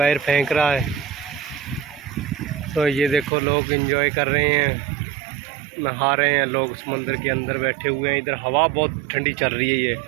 फेंक रहा है। तो ये देखो लोग एंजॉय कर रहे हैं, नहा रहे हैं लोग, समुंदर के अंदर बैठे हुए हैं। इधर हवा बहुत ठंडी चल रही है। ये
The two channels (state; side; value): drops out; left; at 3.3 s